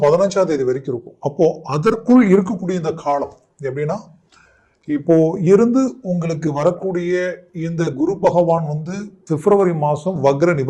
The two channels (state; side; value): identical; both; correlation 1.00